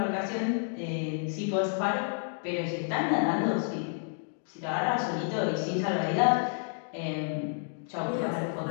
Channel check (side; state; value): right; silent; digital silence